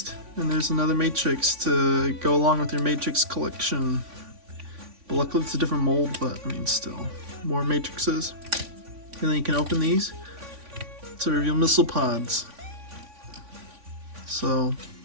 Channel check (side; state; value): left; late; 3.5 ms